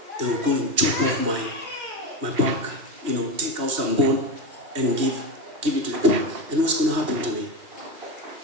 They will go and chop off my back, take out some bone and give it to the pig. And what's going to happen to me?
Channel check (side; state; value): left; late; 2.6 ms